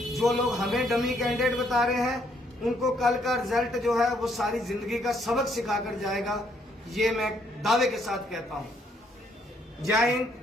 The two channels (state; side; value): normal; both; correlation 0.70